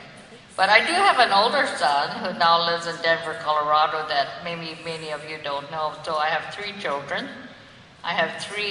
But I do have an older son who now lives in Denver, Colorado, that maybe many of you don't know. So I have 3 children. I have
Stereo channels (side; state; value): both; identical; correlation 1.00